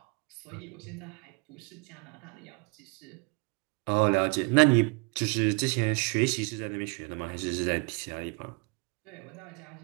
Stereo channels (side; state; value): left; quieter; 32.7 dB